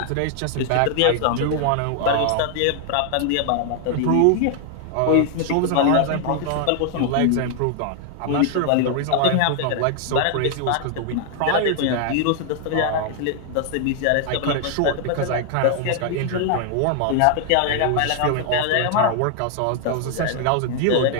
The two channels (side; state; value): both; different; correlation 0.00